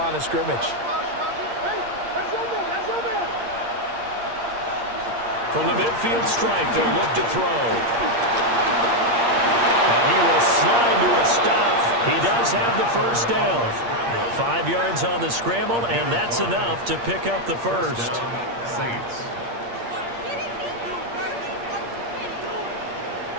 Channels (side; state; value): left; late; 8.6 ms